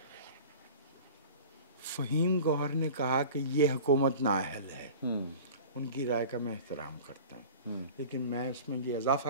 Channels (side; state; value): both; inverted; correlation -0.38